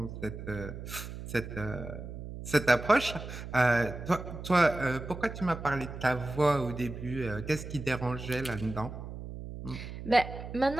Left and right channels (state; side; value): noise; right; hum, 10 dB below the sound